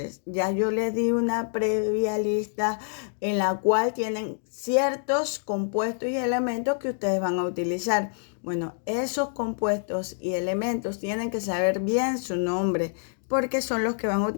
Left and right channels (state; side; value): silent; right; digital silence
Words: Ya yo les di una previa lista en la cual tienen ciertos compuestos y elementos que ustedes van a utilizar. Bueno, esos compuestos y elementos tienen que saber bien su nombre porque son los que van a